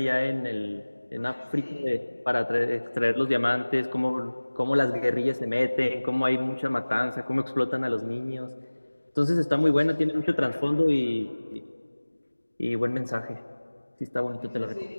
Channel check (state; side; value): inverted; both; correlation -1.00